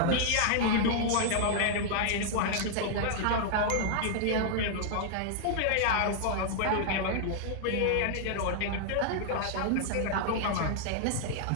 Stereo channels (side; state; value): both; different; correlation -0.01